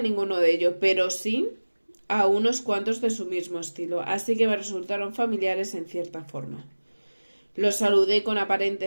ninguno de ellos, pero sí a unos cuantos de su mismo estilo, así que me resultaron familiares en cierta forma. Los saludé con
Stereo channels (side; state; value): both; inverted; correlation -1.00